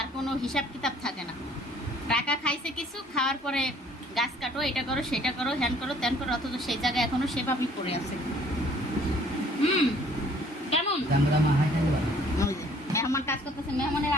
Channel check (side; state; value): both; normal; correlation 0.58